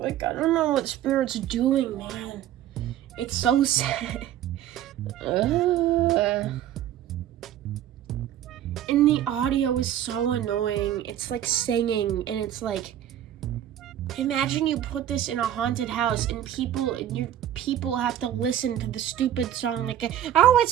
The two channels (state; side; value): quieter; left; 11.5 dB